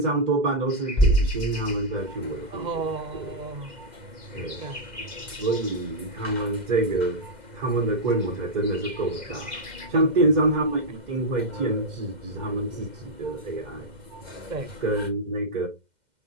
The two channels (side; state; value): left; late; 2.1 ms